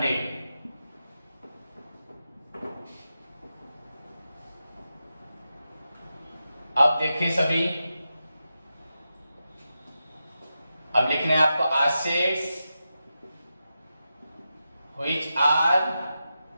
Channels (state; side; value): inverted; both; correlation -0.90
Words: अब देखिए सभी, अब लिखने हैं आपको assets which are